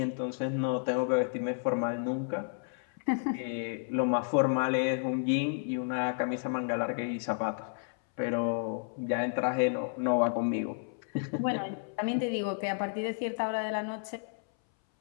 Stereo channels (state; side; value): silent; right; 57 dB below the other